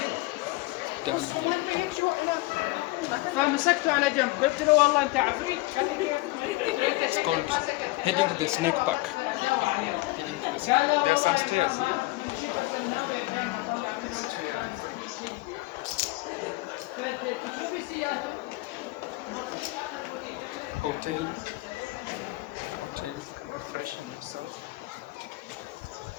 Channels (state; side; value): quieter; right; 21.4 dB